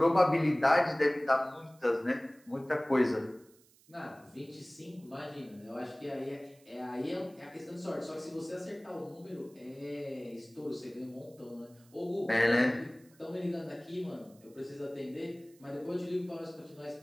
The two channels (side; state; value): right; noise; hiss, 29 dB below the sound